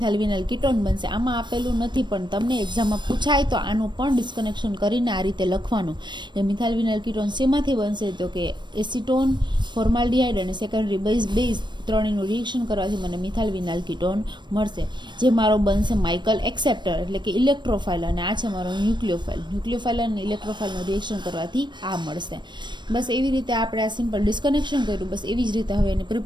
વિનાઇલ કીટોન બનશે. આમાં આપેલું નથી પણ તમને એક્ઝામમાં પૂછાય તો આનું પણ ડિસ્કનેક્શન કરીને આ રીતે લખવાનું. એ મિથાઇલ વિનાઇલ કીટોન શેમાંથી બનશે, તો કે એસિટોન, ફોર્માલ્ડિહાઇડ અને સેકન્ડરી બેઝ ત્રણેયનું રિએક્શન કરવાથી મને મિથાઇલ વિનાઇલ કીટોન મળશે, જે મારો બનશે માઇકલ એક્સેપ્ટર એટલે કે ઇલેક્ટ્રોફાઇલ. અને આ છે મારો ન્યુક્લિયોફાઇલ. ન્યુક્લિયોફાઇલ અને ઇલેક્ટ્રોફાઇલનું રિએક્શન કરવાથી આ મળશે. બસ એવી રીતે આપણે આ સિમ્પલ ડિસ્કનેક્શન કર્યું. બસ એવી જ રીતે હવે એની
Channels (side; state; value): left; late; 0.22 ms